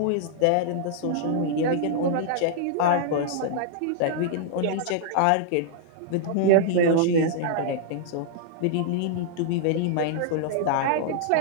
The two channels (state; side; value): different; both; correlation -0.01